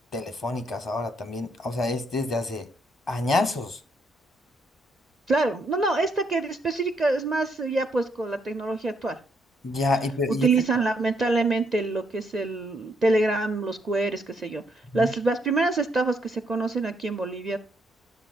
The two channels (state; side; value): normal; both; correlation 0.74